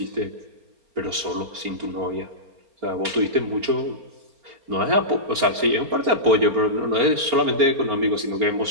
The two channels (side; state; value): left; late; 4.3 ms